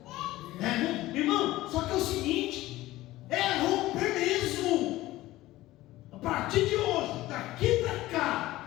Irmão, só que é o seguinte, é romper mesmo. A partir de hoje, daqui para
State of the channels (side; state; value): right; quieter; 16.9 dB